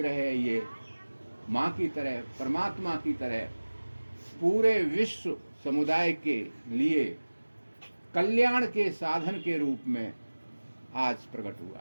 है, ये माँ की तरह, परमात्मा की तरह पूरे विश्व समुदाय के लिए कल्याण के साधन के रूप में आज प्रकट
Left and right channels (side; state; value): both; inverted; correlation -1.00